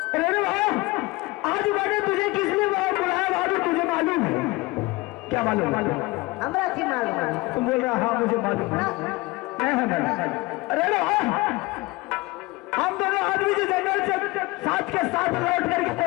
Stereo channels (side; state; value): right; quieter; 22.4 dB